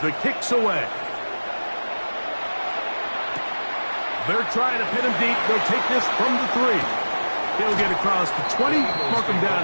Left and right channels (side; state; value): both; inverted; correlation -1.00